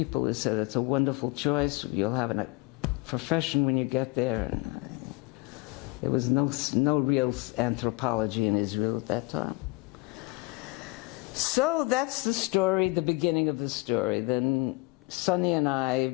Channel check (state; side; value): quieter; right; 23.5 dB